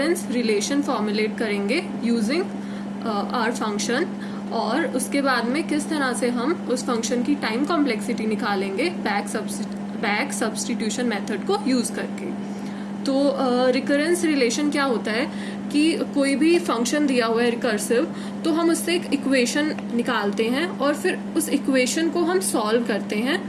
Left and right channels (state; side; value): identical; both; correlation 1.00